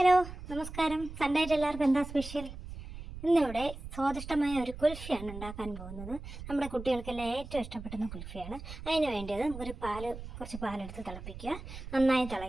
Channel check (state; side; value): noise; right; rumble, 11 dB below the sound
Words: നമസ്കാരം. Sunday ആയിട്ട് എല്ലാവർക്കും എന്താ സ്പെഷ്യൽ? ഇന്നിവിടെ സ്വാദിഷ്ടമായ ഒരു കുൽഫിയാണ് ഉണ്ടാക്കാൻ പോകുന്നത്. നമ്മുടെ കുട്ടികൾക്കെല്ലാം ഏറ്റവും ഇഷ്ടപ്പെടുന്ന കുൽഫിയാണ്. അതിന് വേണ്ടിയത് നമുക്കൊരു കുറച്ച് പാലെടുത്ത് തിളപ്പിക്കുക. നന്നായി